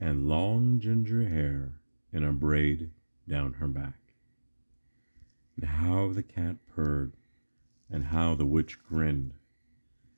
long ginger hair in a braid down her back. And how the cat purred, and how the witch grinned,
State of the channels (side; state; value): both; inverted; correlation -1.00